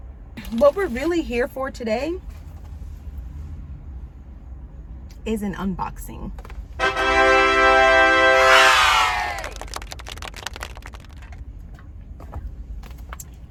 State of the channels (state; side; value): identical; both; correlation 1.00